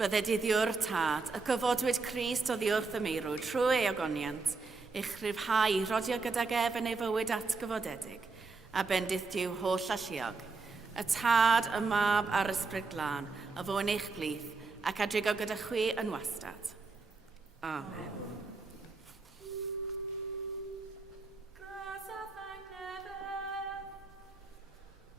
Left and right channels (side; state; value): left; quieter; 4.1 dB